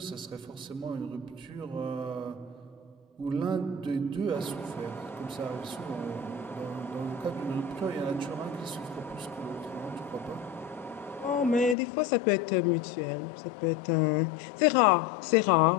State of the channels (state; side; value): drops out; right; at 11.8 s